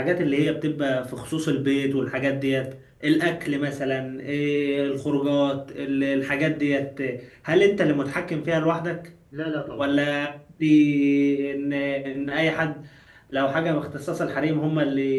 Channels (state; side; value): identical; both; correlation 1.00